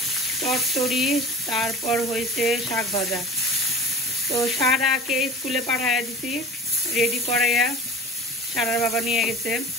চচ্চড়ি, তারপর হয়েছে শাক ভাজা। তো সারাকে স্কুলে পাঠাইয়া দিছি রেডি করাইয়া, সারার বাবা নিয়ে গেছে।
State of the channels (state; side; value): normal; both; correlation 0.39